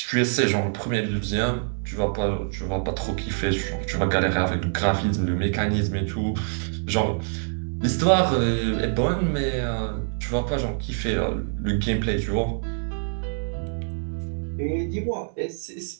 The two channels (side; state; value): left; silent; digital silence